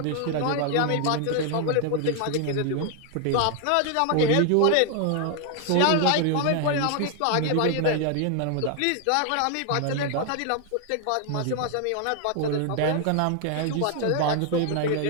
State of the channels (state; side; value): different; both; correlation 0.00